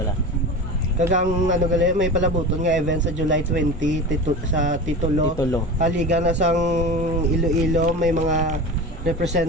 Kagang ano gali may palabuton nga event sa July 20 sa Titulo. Liga na sang Iloilo may mga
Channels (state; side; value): normal; both; correlation 0.30